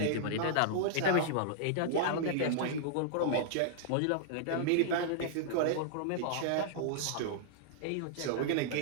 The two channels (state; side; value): different; both; correlation -0.01